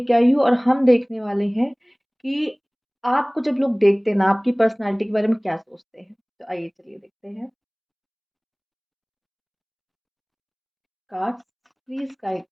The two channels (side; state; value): both; identical; correlation 1.00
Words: आई हूँ और हम देखने वाले हैं कि आपको जब लोग देखते हैं ना, आपकी पर्सनालिटी के बारे में क्या सोचते हैं। तो आइए चलिए देखते हैं। Cards please guide